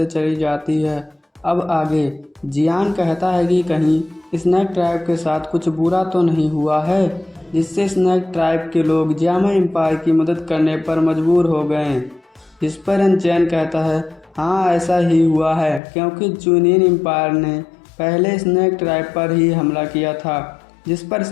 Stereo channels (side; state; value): right; drops out; at 15.8 s